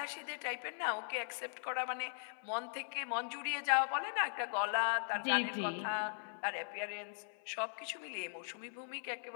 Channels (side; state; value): right; silent; 51 dB below the other